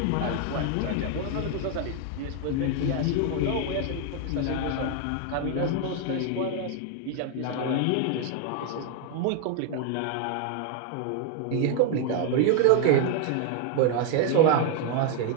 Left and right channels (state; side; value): different; both; correlation 0.01